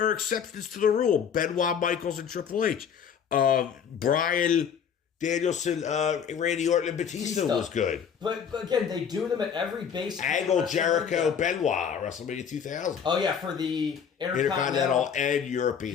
exceptions to the rule. Benoit, Michaels, and Triple H. Bryan... Danielson, Randy Orton, and Batista was good. But again, they do them at every base. Angle, Jericho, Benoit, WrestleMania 2000. Oh, yeah, for the Intercontinental and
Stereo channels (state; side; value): quieter; right; 7.5 dB